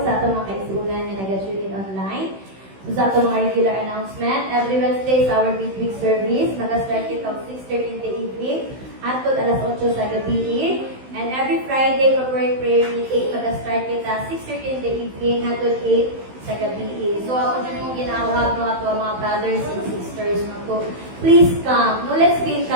sa atong mga kaisunan na nag-tune in online. So sa atong mga regular announcement, every Wednesday is our midweek service. Mag-start it of 6:30 in the evening hangtod alas 8 sa gabi. And every Friday, corporate prayer meeting, mag-start it at 6:30 in the evening hangtod 8 sa gabi. So ako dyan mong ginawag no ato mga brothers and sisters no to please come. No, let's be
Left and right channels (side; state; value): left; late; 16 ms